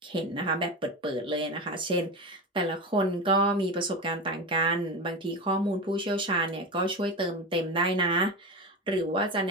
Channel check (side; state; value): both; normal; correlation 0.22